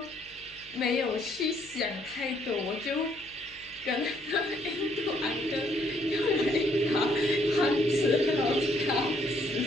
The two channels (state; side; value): noise; left; hum, 26 dB below the sound